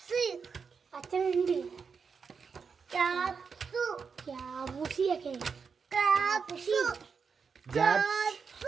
അച്ഛനുണ്ട്. Capsule. ക്യാബുസിയൊക്കെ. Capsule.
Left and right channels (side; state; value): left; quieter; 5.7 dB